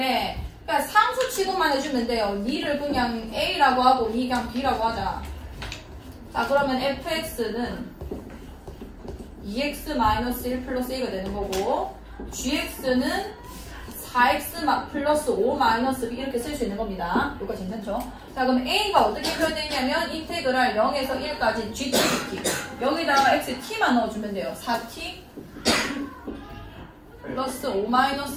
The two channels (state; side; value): identical; both; correlation 1.00